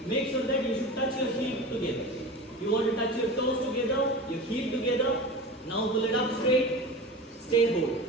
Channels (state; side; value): normal; both; correlation 0.31